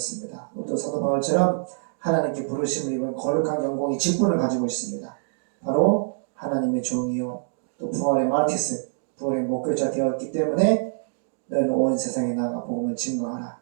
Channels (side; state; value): left; silent; digital silence